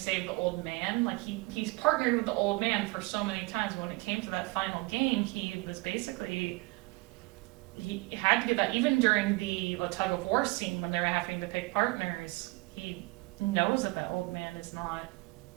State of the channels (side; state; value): left; quieter; 24.5 dB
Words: the old man. He's partnered with the old man for so many times. When it came to that final game, he was basically, he had to give that, even during the tug of war scene when they were having to pick partners, he knows that old man is not